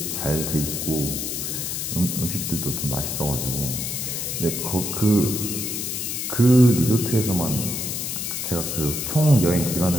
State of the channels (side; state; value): left; noise; hiss, 3 dB below the sound